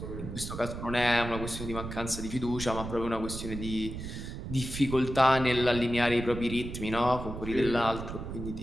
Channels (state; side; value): noise; right; rumble, 8 dB below the sound